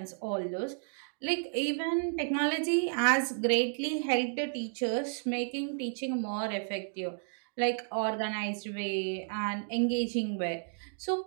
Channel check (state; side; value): silent; left; digital silence